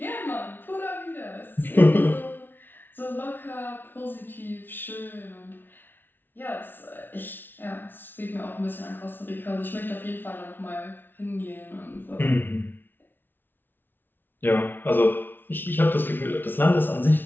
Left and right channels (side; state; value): right; late; 0.097 ms